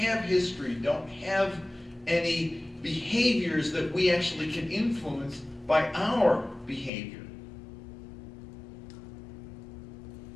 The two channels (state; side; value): drops out; right; at 6.9 s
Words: history, don't have any behaviors that we actually can influence by our behavior.